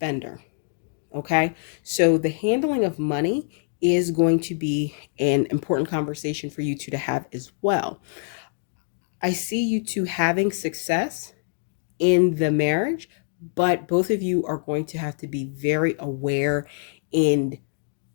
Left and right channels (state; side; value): silent; right; digital silence